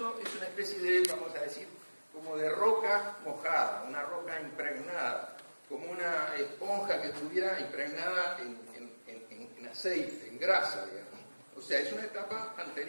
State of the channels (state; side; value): inverted; both; correlation -1.00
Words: es una especie de, vamos a decir, como de roca mojada, una roca impregnada, como una esponja que estuviera impregnada en aceite, en grasa, digamos. O sea, es una etapa